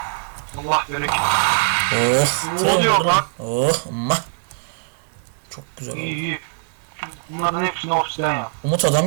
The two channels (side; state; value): left; silent; 65 dB below the other